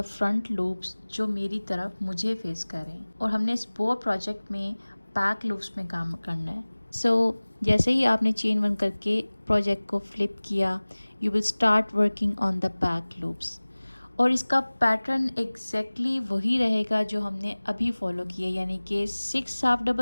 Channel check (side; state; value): both; inverted; correlation -1.00